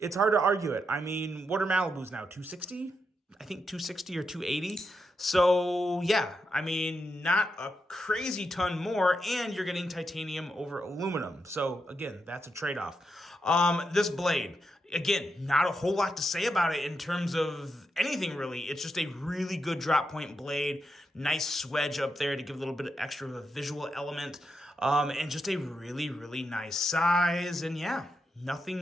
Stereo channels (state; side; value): normal; both; correlation 0.84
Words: I mean, what are Malibus now? 260? I think 260 or 280. So yeah, I mean, not a crazy ton more, and you're getting titanium over aluminum. So again, that's a trade-off. This blade, again, not a whole lot to say about it in terms of anything really. It's just a really good drop point blade, nice swedge up there to give a little bit of extra of a visual element, and just a really, really nice size. And yeah,